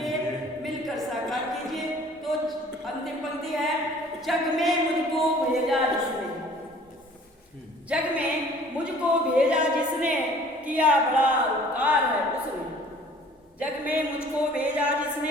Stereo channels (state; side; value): normal; both; correlation 0.52